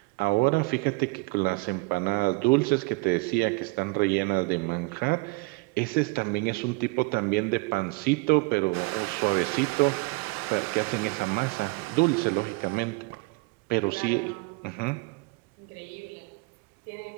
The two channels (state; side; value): quieter; left; 26.7 dB